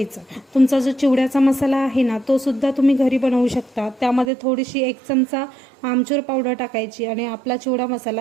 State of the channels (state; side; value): drops out; left; at 4.3 s